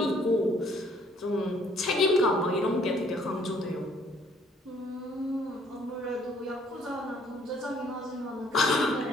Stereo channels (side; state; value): both; normal; correlation 0.62